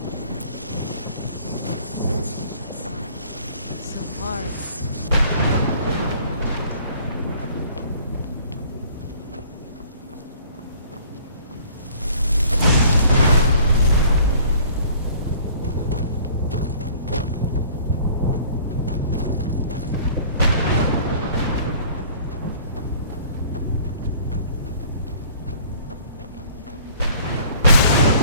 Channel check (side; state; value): both; inverted; correlation -0.53